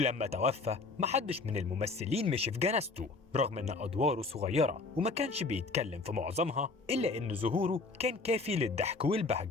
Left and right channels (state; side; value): quieter; right; 3.9 dB